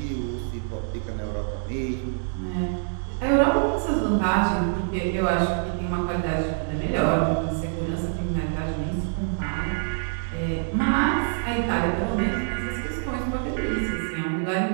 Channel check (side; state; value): left; silent; 61 dB below the other